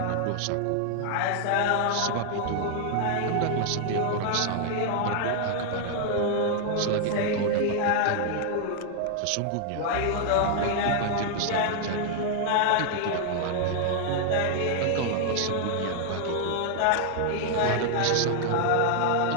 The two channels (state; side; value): different; both; correlation 0.00